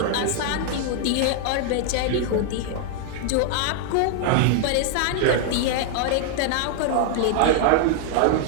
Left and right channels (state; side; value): different; both; correlation 0.00